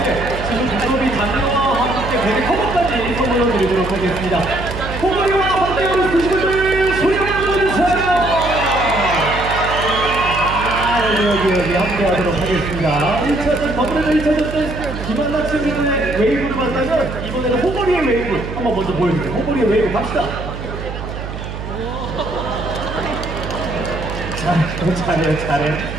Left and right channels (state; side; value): noise; right; hum, 8 dB below the sound